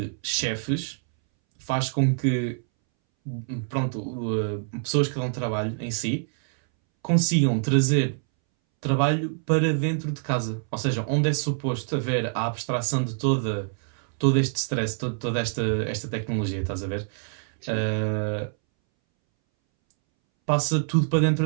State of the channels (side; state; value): left; silent; 61 dB below the other